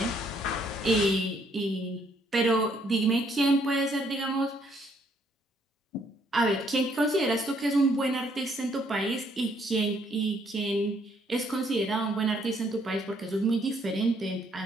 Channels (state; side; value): normal; both; correlation 0.68